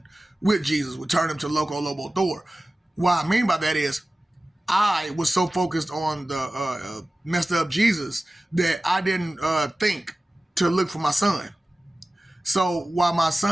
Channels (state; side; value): normal; both; correlation 0.96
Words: with Jesus would turn him to Loco, Lobo, Thor. What I mean by that is I was so focused on the messed up Jesus that I didn't think to look for my son. So while my